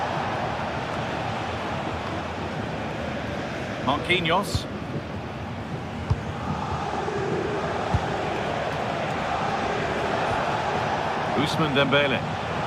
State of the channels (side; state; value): both; identical; correlation 1.00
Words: Marquinhos. Ousmane Dembele.